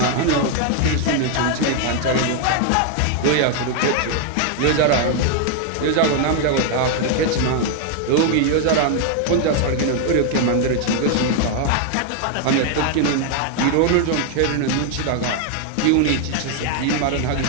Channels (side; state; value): both; different; correlation 0.00